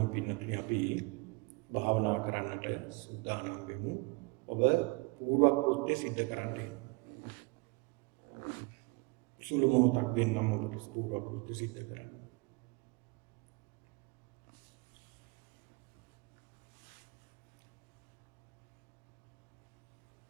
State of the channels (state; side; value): quieter; left; 28.7 dB